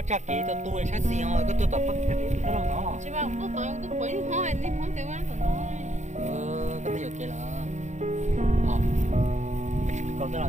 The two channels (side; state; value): left; late; 0.34 ms